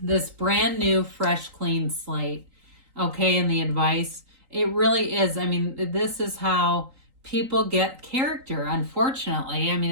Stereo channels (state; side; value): late; left; 3.9 ms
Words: this brand new, fresh, clean slate. Okay, and the advice, it really is. I mean, this is how people get character, unfortunately. I mean,